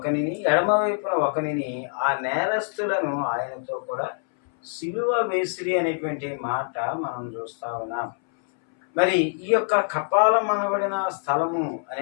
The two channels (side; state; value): right; silent; 62 dB below the other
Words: ఎడమవైపున ఒకనిని, ఆ నేరస్తులను ఆయనతో కూడా సిలువ వేసిరి అనేటువంటి మాట మనం చూస్తా ఉన్నాం. మరి ఈ యొక్క కపాలం అనబడిన స్థలము